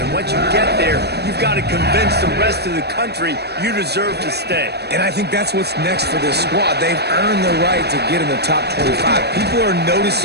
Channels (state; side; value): late; left; 0.48 ms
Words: once you get there, you've got to convince the rest of the country you deserve to stay. And I think that's what's next for this squad. They've earned the right to get in the top 25. People are